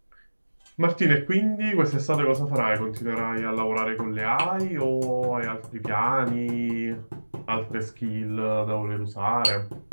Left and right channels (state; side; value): inverted; both; correlation -1.00